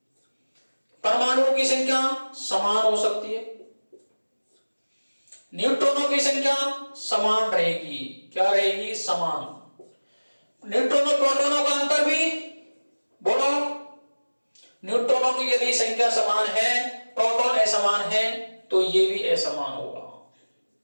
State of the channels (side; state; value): both; inverted; correlation -1.00